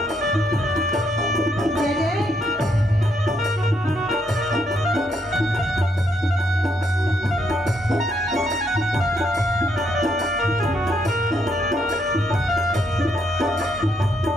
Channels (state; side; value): normal; both; correlation 0.75